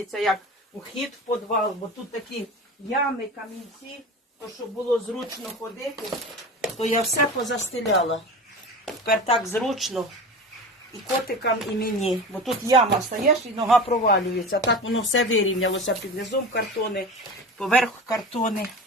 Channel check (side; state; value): both; normal; correlation 0.31